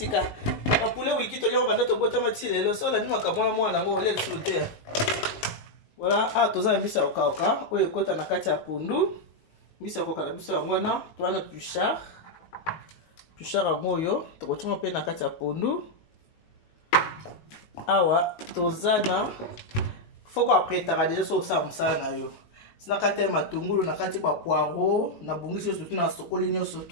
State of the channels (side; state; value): right; late; 19 ms